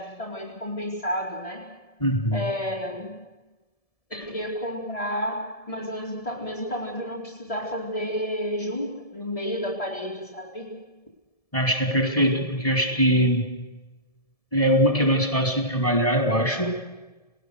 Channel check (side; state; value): right; late; 1.7 ms